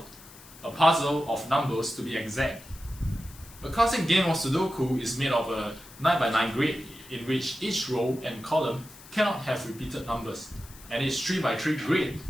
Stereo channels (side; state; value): left; noise; hiss, 20 dB below the sound